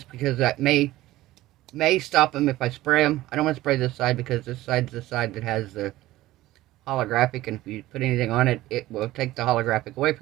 because that may stop them if I spray them. I don't want to spray this side because this side's the side that has the holographic, and if you put anything on it, it will take the holographic away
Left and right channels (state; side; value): quieter; left; 16.5 dB